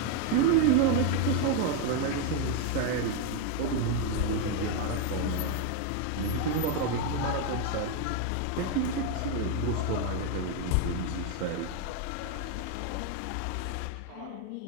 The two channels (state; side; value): different; both; correlation 0.01